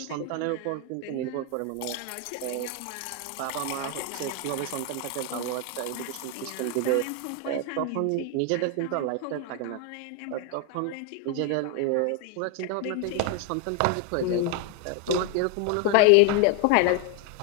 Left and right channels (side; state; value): both; different; correlation 0.01